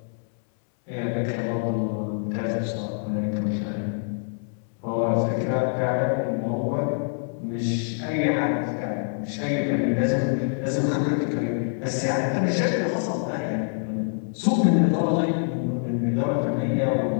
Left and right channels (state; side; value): silent; right; 61 dB below the other